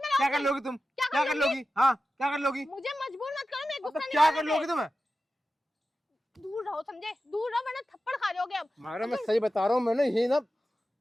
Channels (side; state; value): both; normal; correlation 0.93